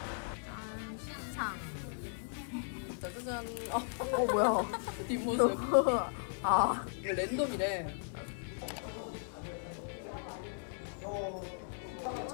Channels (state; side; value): silent; right; digital silence